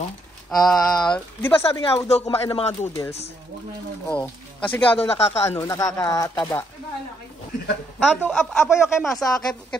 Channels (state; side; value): normal; both; correlation 0.73